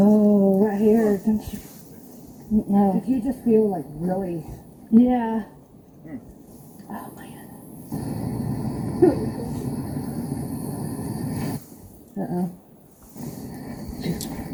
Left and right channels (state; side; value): identical; both; correlation 1.00